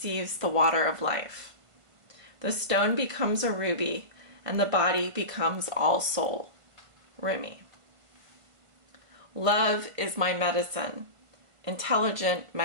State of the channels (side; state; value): left; late; 1.5 ms